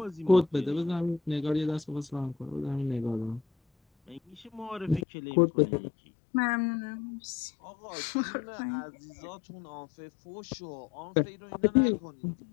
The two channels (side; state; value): right; drops out; at 5.1 s